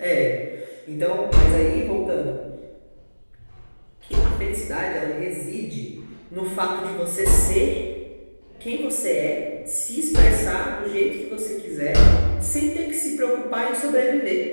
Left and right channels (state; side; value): inverted; both; correlation -1.00